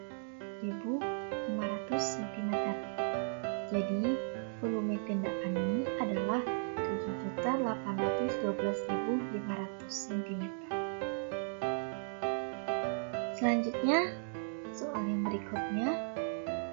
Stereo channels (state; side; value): silent; left; digital silence